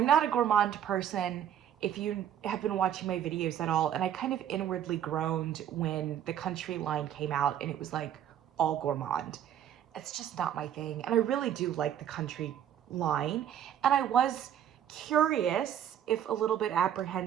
not a gourmand person if you have been watching my videos at all, and I kind of inwardly groaned when the Country line came out and it was like all gourmand. It's just not my thing, and I really do like the Country line, and I was curious, if a little bit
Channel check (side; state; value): left; quieter; 10.1 dB